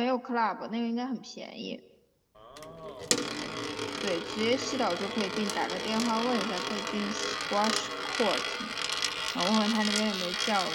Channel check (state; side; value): identical; both; correlation 1.00